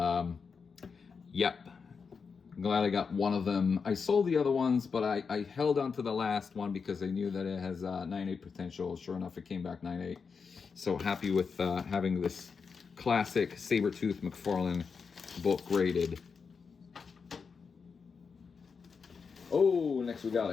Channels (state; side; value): quieter; right; 5.5 dB